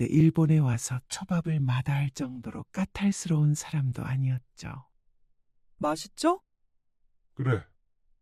일본에 와서 초밥을 마다할 정도로 까탈스러운 사람도 아니었죠. 맛있죠? 그래.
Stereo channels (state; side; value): identical; both; correlation 1.00